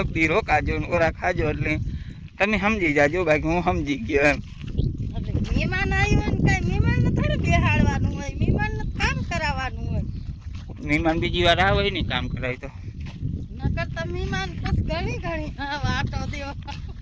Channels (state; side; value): identical; both; correlation 1.00